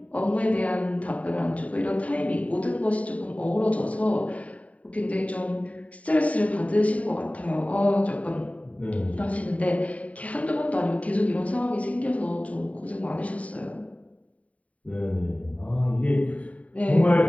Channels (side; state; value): right; late; 0.068 ms